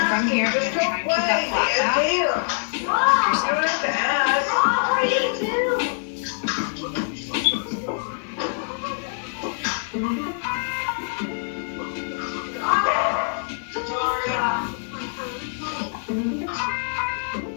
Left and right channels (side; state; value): right; silent; 62 dB below the other